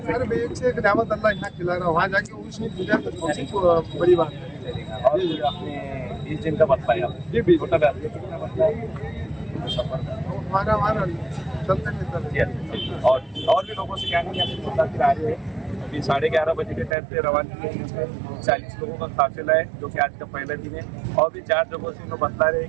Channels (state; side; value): drops out; left; at 16.9 s